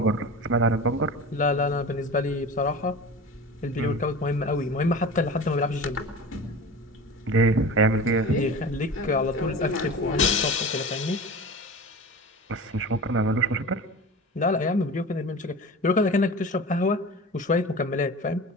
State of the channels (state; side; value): normal; both; correlation 0.33